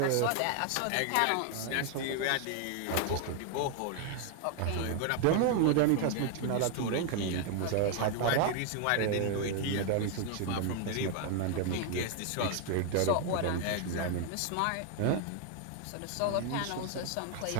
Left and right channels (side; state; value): both; different; correlation 0.00